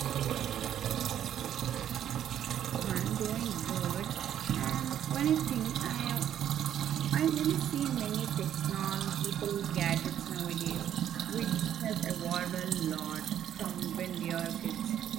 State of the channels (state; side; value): quieter; left; 10.3 dB